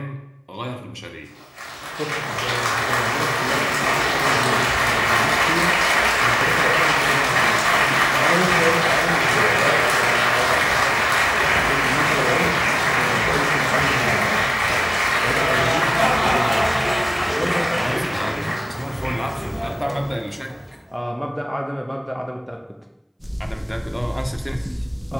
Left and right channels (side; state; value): both; identical; correlation 1.00